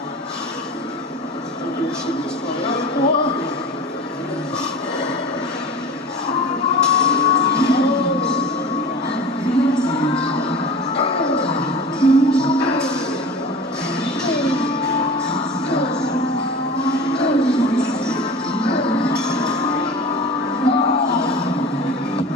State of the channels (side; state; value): both; normal; correlation 0.36